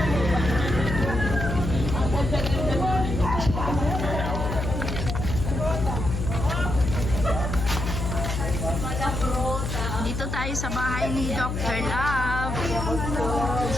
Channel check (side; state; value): left; noise; hum, 3 dB below the sound